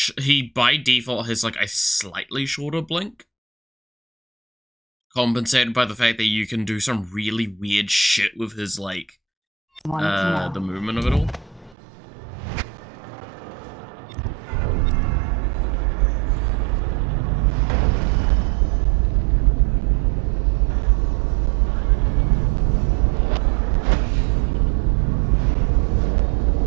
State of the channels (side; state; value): left; drops out; at 11.8 s